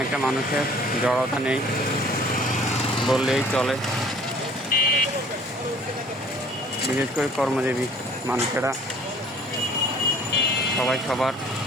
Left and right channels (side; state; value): both; normal; correlation 0.53